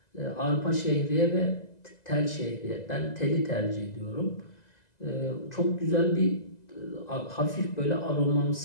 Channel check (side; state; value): right; late; 2.0 ms